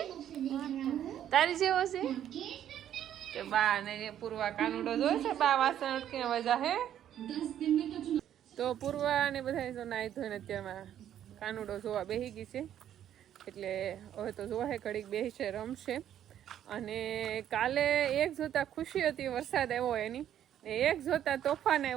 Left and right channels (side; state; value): left; quieter; 10.7 dB